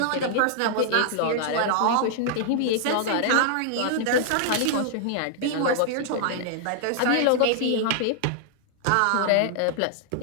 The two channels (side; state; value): both; different; correlation -0.01